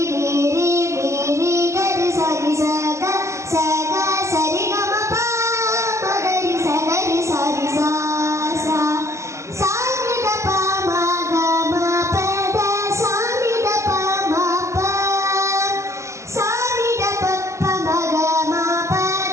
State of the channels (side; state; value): left; late; 0.14 ms